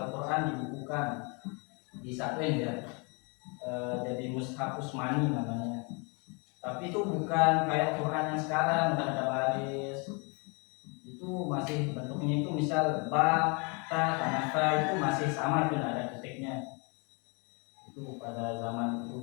dibukukan, disatuin ya, jadi Mushaf Utsmani namanya. Tapi itu bukan kayak Quran yang sekarang udah ada baris, itu masih bentuknya itu misal ba, ta, sama ta itu masih sama, itu ada titiknya. Itu pada zaman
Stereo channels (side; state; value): right; quieter; 33.0 dB